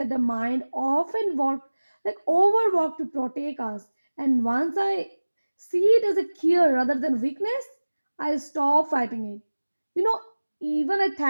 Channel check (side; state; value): both; inverted; correlation -1.00